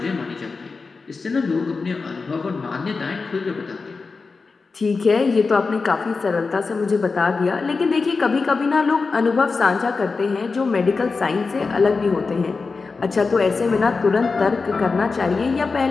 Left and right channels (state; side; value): quieter; right; 4.4 dB